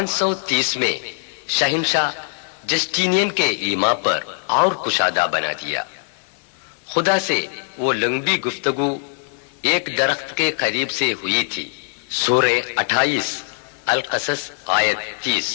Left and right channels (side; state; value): right; silent; 59 dB below the other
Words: میں شہنشاہ جسٹینین کے ایما پر اور کشادہ بنا دیا. خدا سے وہ لمبی گفتگو ایک درخت کے قریب سے ہوئی تھی. سورہ 28 القصص آیت 30.